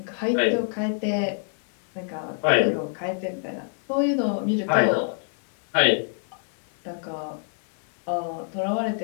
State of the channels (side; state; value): right; silent; 61 dB below the other